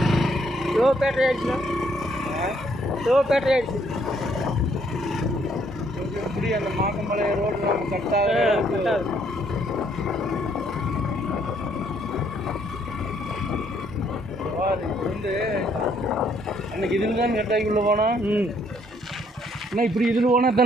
லோ பேட்டரி ஆயிடுச்சுண்ணா. லோ பேட்டரி ஆயிடுச்சு. எப்படி அந்த மாக்கமலை ரோடு கட்டாக வந்து அன்னைக்கு இதில் தான் கட்டாக்கி உள்ள போனோம். அண்ணா இப்படி இதில் போனால்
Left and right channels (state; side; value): normal; both; correlation 0.68